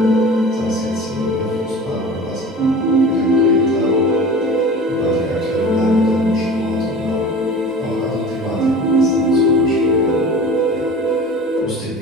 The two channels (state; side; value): normal; both; correlation 0.38